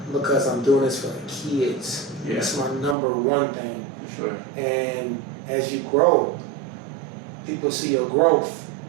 because I'm doing this for the kids. It's my number one thing. For sure. And as you grow, people see your growth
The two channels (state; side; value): drops out; left; at 3.0 s